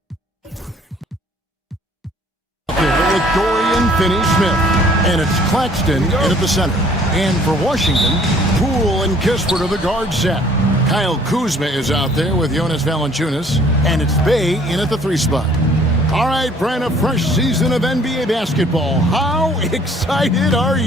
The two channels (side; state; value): both; normal; correlation 0.57